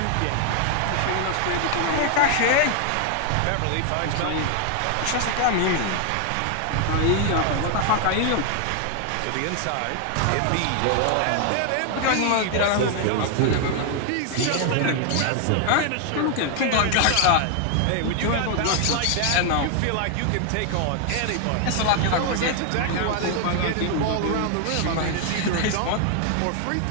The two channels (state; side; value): different; both; correlation 0.00